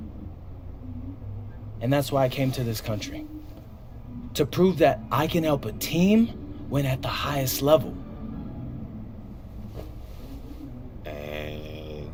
And that's why I came to this country. To prove that I can help a team win at the highest level. And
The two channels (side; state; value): both; identical; correlation 1.00